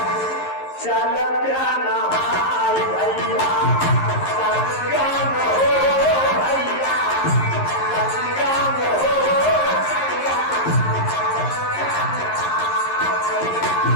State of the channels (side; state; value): right; late; 11 ms